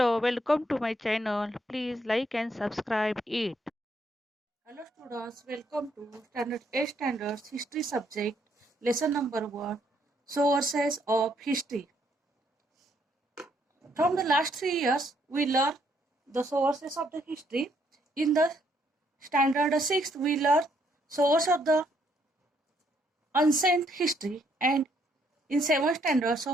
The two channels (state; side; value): normal; both; correlation 0.71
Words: welcome to my channel. Please like and subscribe it. Hello students, welcome to Standard 8 Standards History subject, lesson number 1, Sources of History. From the last 3 years, we learned the sources of the history. In the Standard 6th, we learned source of the ancient history, and in 7th Standard,